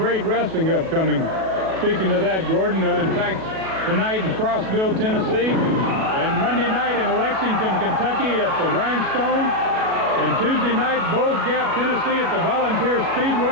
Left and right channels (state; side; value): late; left; 37 ms